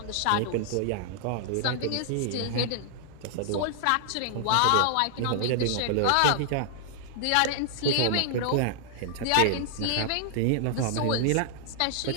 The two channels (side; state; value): both; different; correlation -0.01